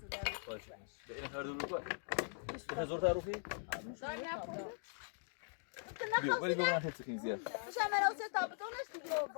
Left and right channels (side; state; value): right; silent; digital silence